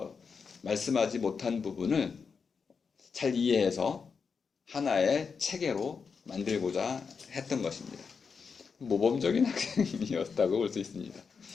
말씀하지 못한 부분을 잘 이해해서 하나의 체계로 만들고자 했던 것입니다. 모범적인 학생이었다고 볼 수 있습니다.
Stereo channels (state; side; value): quieter; right; 5.6 dB